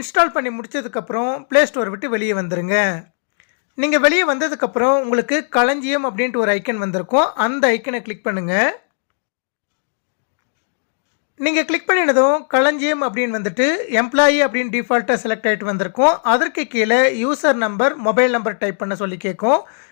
பண்ணி முடித்ததுக்கப்புறம் ப்ளே ஸ்டோர் விட்டு வெளியே வந்துடுங்க. நீங்கள் வெளியே வந்ததுக்கப்புறம் உங்களுக்கு களஞ்சியம் அப்படின்ட்டு ஒரு ஐக்கன் வந்திருக்கும். அந்த ஐக்கனை கிளிக் பண்ணுங்கள். நீங்கள் கிளிக் பண்ணினதும் களஞ்சியம் அப்படின்னு வந்துட்டு எம்ப்ளாயி அப்படின்னு டிஃபால்ட்டாக செலக்ட் ஆகிட்டு வந்திருக்கும். அதற்கு கீழே user number, mobile number type பண்ண சொல்லி கேட்கும்.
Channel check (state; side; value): silent; right; digital silence